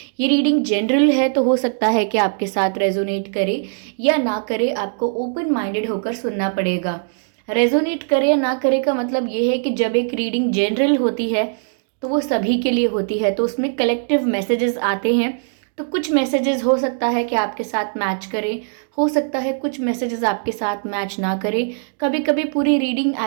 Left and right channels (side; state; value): left; silent; digital silence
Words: ये रीडिंग जनरल है तो हो सकता है कि आपके साथ रेजोनेट करे या ना करे, आपको ओपन माइंडेड होकर सुनना पड़ेगा। रेजोनेट करे या ना करे का मतलब ये है कि जब एक रीडिंग जनरल होती है तो वो सभी के लिए होती है, तो उसमें कलेक्टिव मैसेजेस आते हैं। तो कुछ मैसेजेस हो सकता है कि आपके साथ मैच करें, हो सकता है कुछ मैसेजेस आपके साथ मैच ना करें। कभी कभी पूरी रीडिंग